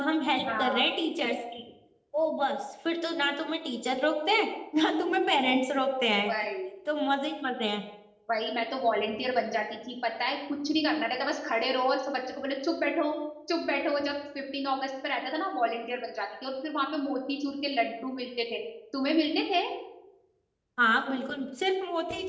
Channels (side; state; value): both; identical; correlation 1.00